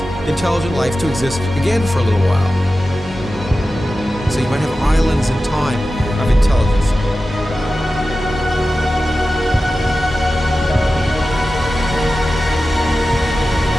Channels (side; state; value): both; normal; correlation 0.94